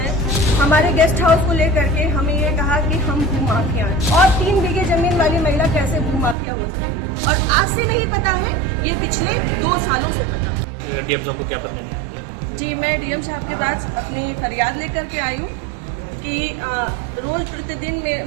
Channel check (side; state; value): left; drops out; at 6.4 s